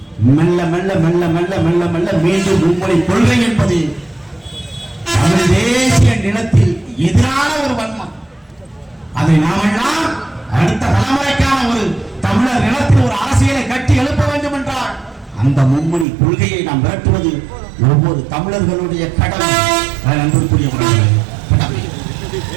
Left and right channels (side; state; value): left; drops out; at 16.1 s